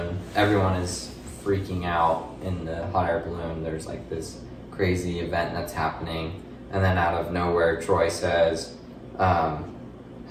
everyone is freaking out in the hot air balloon. There's like this crazy event that's happening, and then out of nowhere Troy says,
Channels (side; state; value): both; identical; correlation 1.00